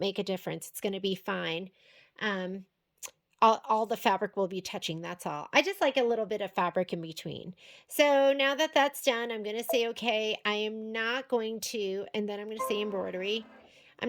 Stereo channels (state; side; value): identical; both; correlation 1.00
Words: a difference. It's going to be fine. All the fabric will be touching, that's all. I just like a little bit of fabric in between. So now that that's done, I'm going to say, okay, I am not going to, and then I'm going to say embroidery. I'm